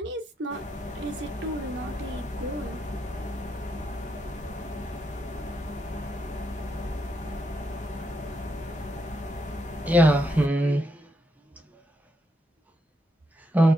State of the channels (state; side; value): normal; both; correlation 0.80